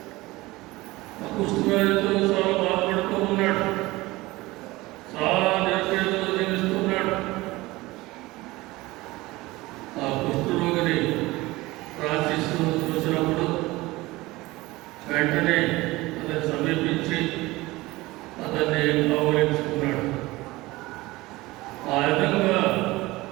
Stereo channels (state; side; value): quieter; left; 20.1 dB